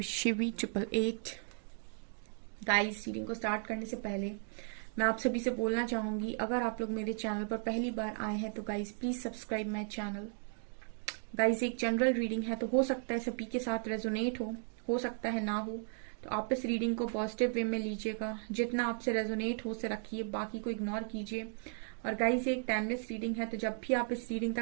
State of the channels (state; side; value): silent; left; 54 dB below the other